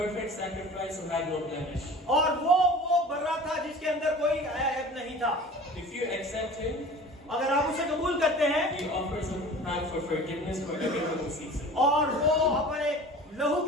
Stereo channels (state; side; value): normal; both; correlation 0.41